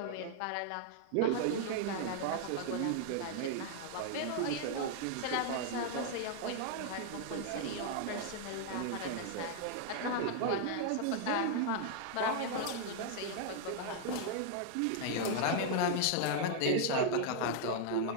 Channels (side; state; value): both; different; correlation 0.00